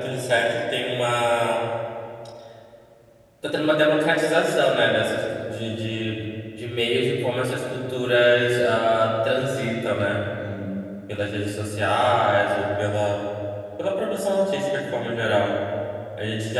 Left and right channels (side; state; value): both; identical; correlation 1.00